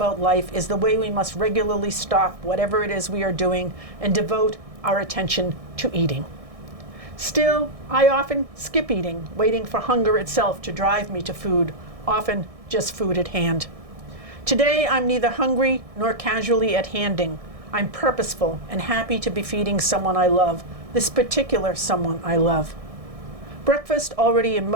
life is the way we must regularly stop whatever it is we are doing and devote our attention to eating." Still, I often skip eating, waiting for hunger itself to drive me to food, often just food at hand. Today, I'm neither hungry nor casually at handing. I'm purposeful and happy to be feeding someone I love, this particular someone I love. Breakfast already in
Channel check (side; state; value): left; late; 1.6 ms